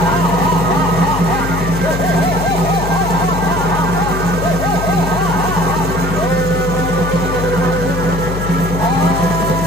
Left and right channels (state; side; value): noise; left; hum, 5 dB below the sound